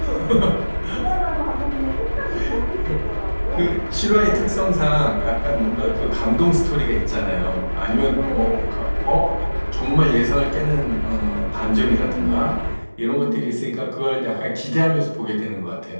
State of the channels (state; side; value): inverted; both; correlation -1.00